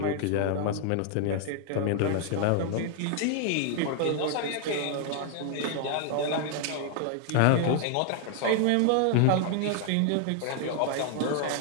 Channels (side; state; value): both; different; correlation 0.00